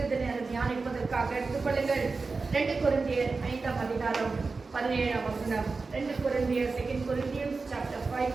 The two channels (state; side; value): quieter; left; 4.1 dB